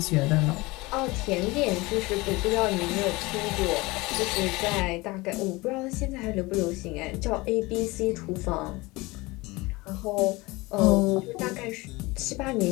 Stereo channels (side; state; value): right; quieter; 22.6 dB